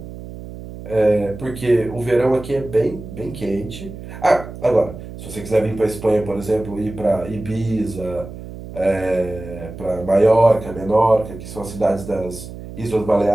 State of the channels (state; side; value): noise; right; hum, 12 dB below the sound